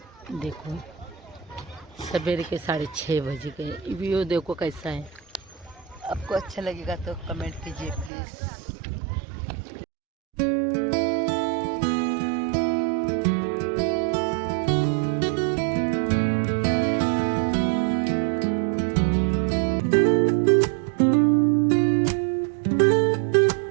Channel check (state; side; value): drops out; left; at 8.1 s